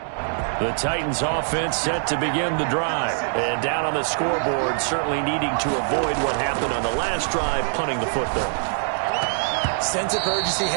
The Titans offense set to begin the drive. And down on the scoreboard, certainly needing to avoid what happened on the last drive, punting the football. Sense of urgency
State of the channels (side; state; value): left; silent; digital silence